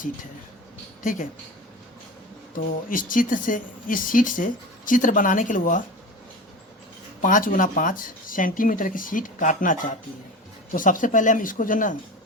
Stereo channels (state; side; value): normal; both; correlation 0.31